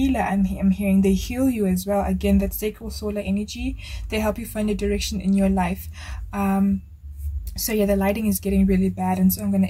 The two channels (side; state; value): both; identical; correlation 1.00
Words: I'm hearing they heal you as well. Again, that sacral solar energy, they help you find a direction in your life. So yeah, the lighting is getting really bad, and so I'm going